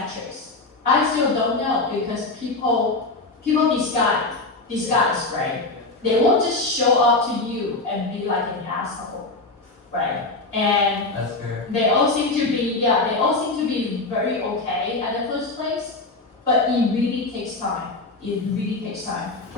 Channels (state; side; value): quieter; right; 3.3 dB